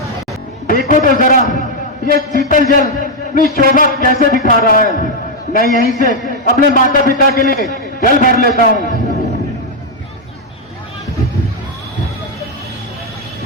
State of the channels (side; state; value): both; normal; correlation 0.01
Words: देखो तो जरा ये शीतल जल अपनी शोभा कैसे दिखा रहा है। मैं यहीं से अपने माता पिता के लिए जल भर लेता हूँ।